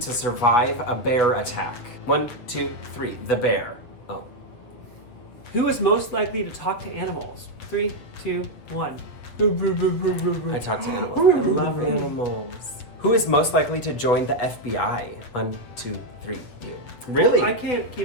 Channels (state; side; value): late; right; 8.4 ms